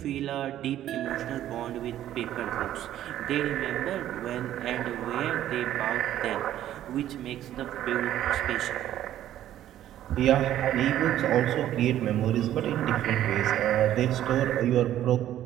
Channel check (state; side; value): quieter; left; 12.2 dB